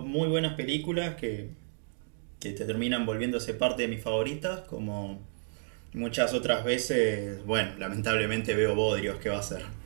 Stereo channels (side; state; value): left; silent; digital silence